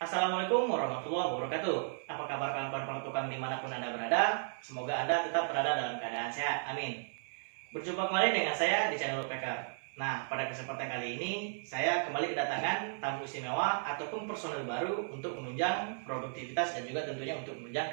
Assalamualaikum warahmatullahi wabarakatuh. Apa kabar kawan-kawan pertukang dimanapun Anda berada? Semoga Anda tetap berada dalam keadaan sehat. Amin. Berjumpa kembali dengan saya di channel Woodpecker. Nah, pada kesempatan kali ini saya kembali kedatangan tamu istimewa ataupun personel baru untuk menunjang produktivitas dan juga tentunya untuk menunjang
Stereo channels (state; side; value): silent; left; 55 dB below the other